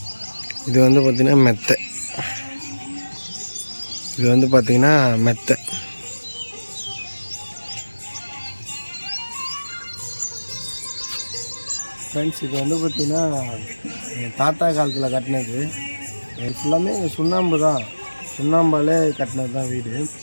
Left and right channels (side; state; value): both; inverted; correlation -1.00